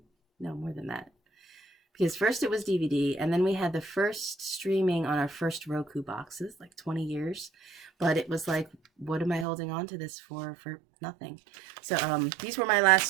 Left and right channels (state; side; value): drops out; left; at 9.5 s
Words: No, more than that. Because first it was DVD, and then we had the first streaming on our first Roku boxes, like 20 years. But it was like, what am I holding on to this for nothing? So these were my